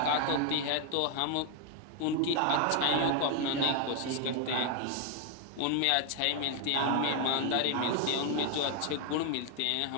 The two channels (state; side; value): different; both; correlation 0.01